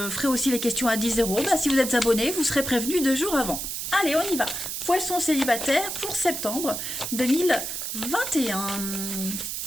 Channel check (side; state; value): right; noise; hiss, 4 dB below the sound